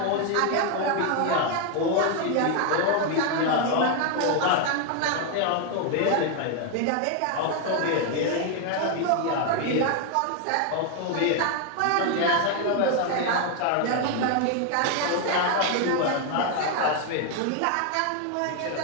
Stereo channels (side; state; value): both; different; correlation 0.01